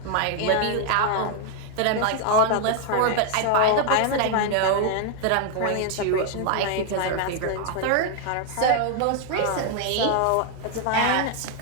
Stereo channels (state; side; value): different; both; correlation 0.00